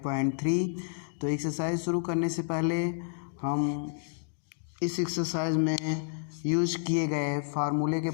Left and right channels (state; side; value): silent; right; digital silence